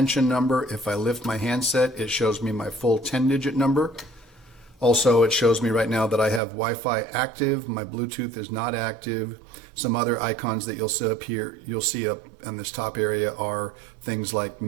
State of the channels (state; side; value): drops out; left; at 6.4 s